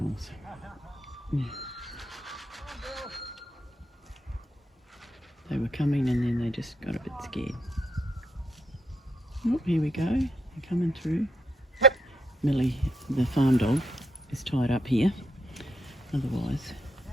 Yeah. They were coming and then they just got a bit scared. Oh, here we go. They're coming through. Millie, the farm dog, is tied up here. Otherwise,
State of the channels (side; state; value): both; normal; correlation 0.76